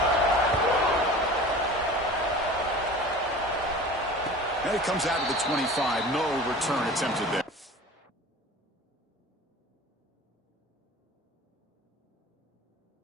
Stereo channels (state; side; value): normal; both; correlation 0.40